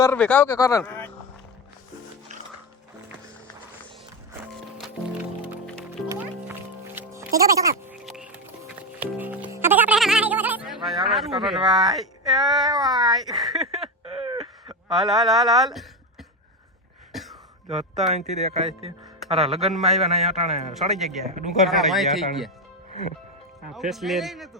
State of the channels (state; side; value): normal; both; correlation 0.14